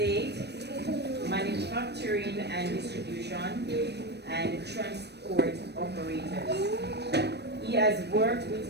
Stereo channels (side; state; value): left; late; 0.49 ms